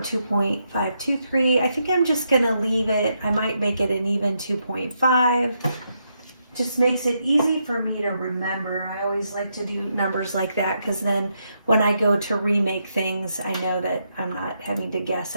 I think I'm just going to leave it. I might make it an even 2.5. Just makes it easy for me to remember. I always like to do numbers like that because then when I go to remake things, I know that I'm not having to guess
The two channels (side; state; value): both; inverted; correlation -0.80